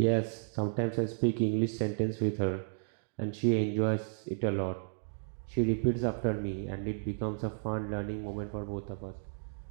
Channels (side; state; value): left; silent; digital silence